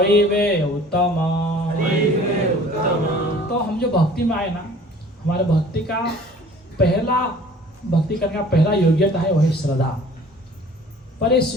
वे उत्तम। तो हम जो भक्ति में आए ना, हमारे भक्ति का पहला, भक्ति करने का पहला योग्यता है वही श्रद्धा। पर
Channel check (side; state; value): both; normal; correlation 0.49